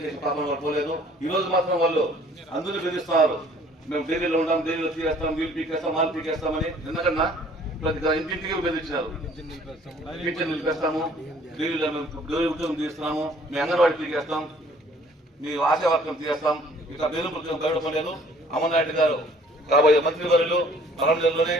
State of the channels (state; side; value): normal; both; correlation 0.56